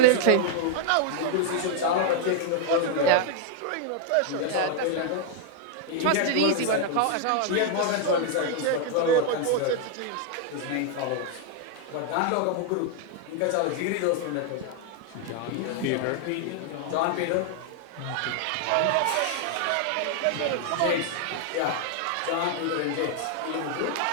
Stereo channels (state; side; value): different; both; correlation 0.00